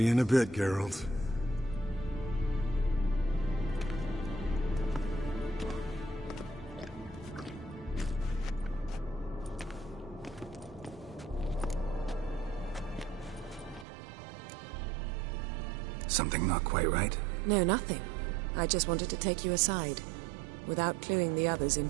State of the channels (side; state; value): left; drops out; at 13.9 s